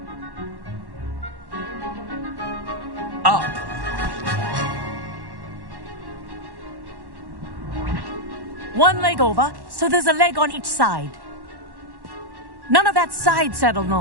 Up! One leg over, so there's a leg on each side. None of that side saddle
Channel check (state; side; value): late; left; 1.1 ms